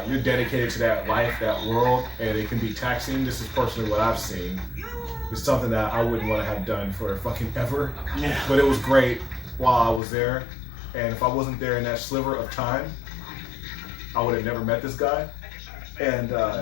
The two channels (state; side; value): drops out; right; at 10.0 s